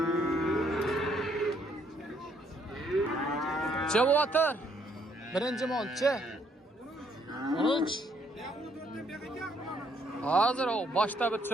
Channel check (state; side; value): normal; both; correlation 0.69